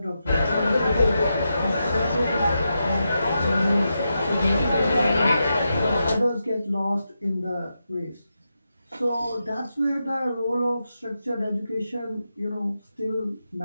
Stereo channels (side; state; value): both; inverted; correlation -0.87